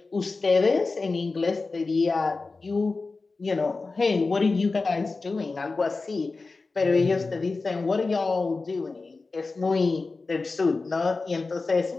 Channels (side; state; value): right; quieter; 3.8 dB